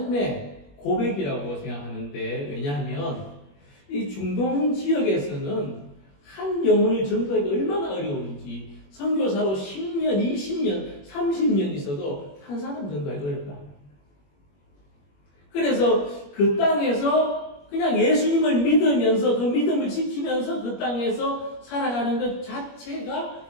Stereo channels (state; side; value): late; right; 21 ms